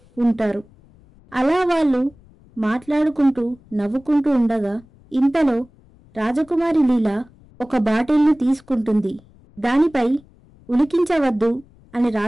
ఉంటారు. అలా వాళ్ళు మాట్లాడుకుంటూ నవ్వుకుంటూ ఉండగా ఇంతలో రాజకుమారి లీలా ఒక బాటిల్ను తీసుకుంటుంది. దానిపై ఉలికించవద్దు అని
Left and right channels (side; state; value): left; noise; rumble, 27 dB below the sound